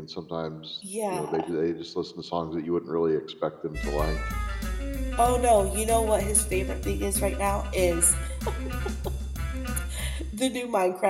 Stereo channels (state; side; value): identical; both; correlation 1.00